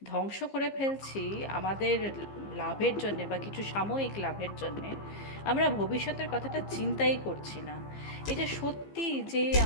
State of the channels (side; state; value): right; late; 15 ms